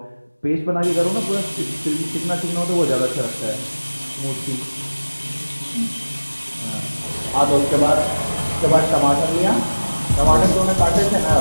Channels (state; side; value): inverted; both; correlation -1.00